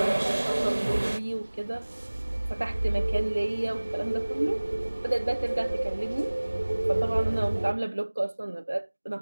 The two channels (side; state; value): both; inverted; correlation -1.00